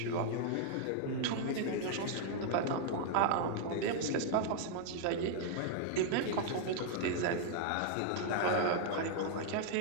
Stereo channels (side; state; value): both; different; correlation -0.01